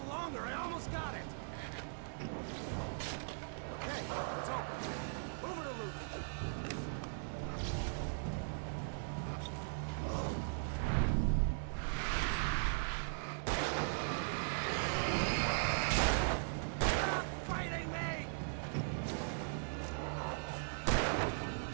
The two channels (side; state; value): left; silent; digital silence